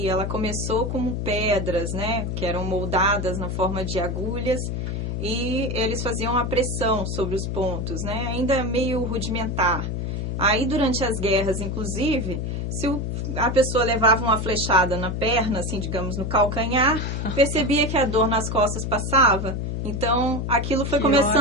ela começou como pedras, né, que eram moldadas na forma de agulhas e eles faziam a pressão sobre os pontos, né, ainda meio rudimentar. Aí, durante as guerras, inclusive, se a pessoa levava uma flechada na perna, assim, digamos, no calcanhar, percebia que a dor nas costas passava. Então, aquilo foi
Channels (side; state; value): left; noise; hum, 3 dB below the sound